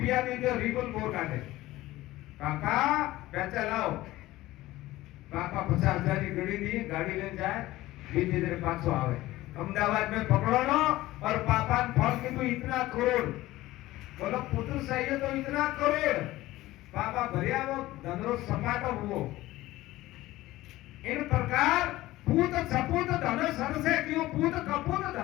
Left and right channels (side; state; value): right; quieter; 17.0 dB